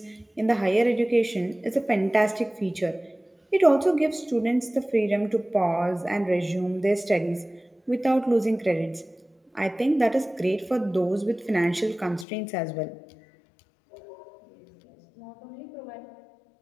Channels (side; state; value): right; drops out; at 12.2 s